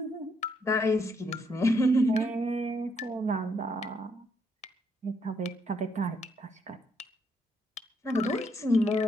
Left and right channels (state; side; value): normal; both; correlation 0.74